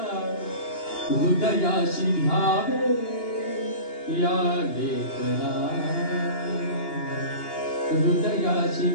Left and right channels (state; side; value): late; right; 2.8 ms